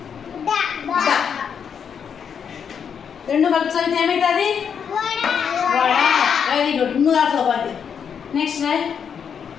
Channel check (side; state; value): right; quieter; 7.3 dB